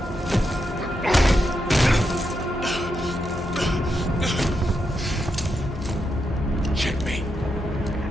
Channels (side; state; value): both; normal; correlation 0.84